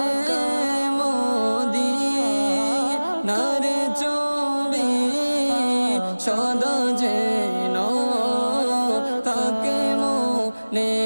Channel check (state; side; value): inverted; both; correlation -1.00